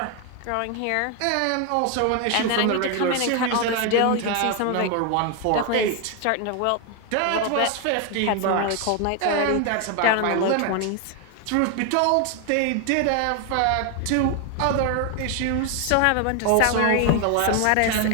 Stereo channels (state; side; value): different; both; correlation 0.01